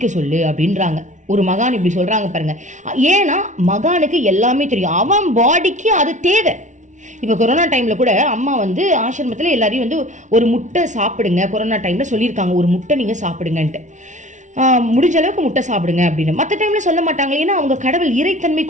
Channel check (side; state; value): left; late; 0.36 ms